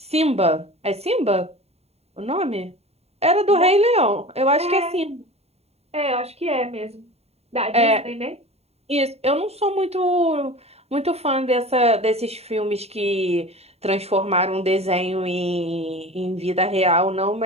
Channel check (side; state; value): left; late; 0.30 ms